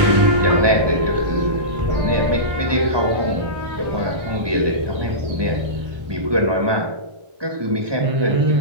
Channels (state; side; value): late; left; 1.2 ms